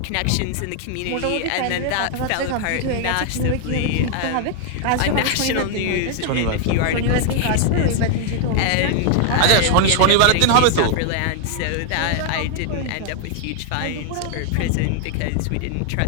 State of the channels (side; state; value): both; different; correlation 0.00